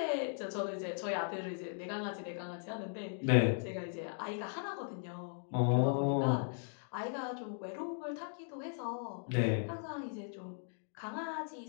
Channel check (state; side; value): silent; right; digital silence